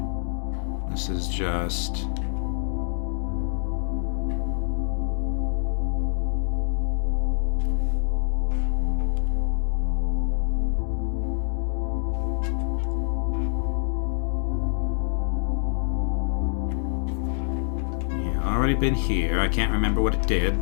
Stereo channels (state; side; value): silent; right; digital silence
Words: This is just... already been here. I can't remember what it did,